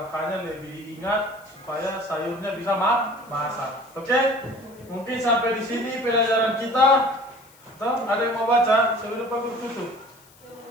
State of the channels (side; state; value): left; noise; hiss, 27 dB below the sound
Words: lebih diingat supaya sayurnya bisa masak. Oke? Mungkin sampai di sini pelajaran kita. Atau ada yang mau baca sebelum Pak Guru tutup?